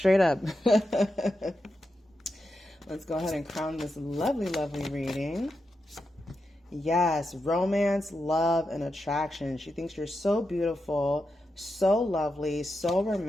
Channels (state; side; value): normal; both; correlation 0.87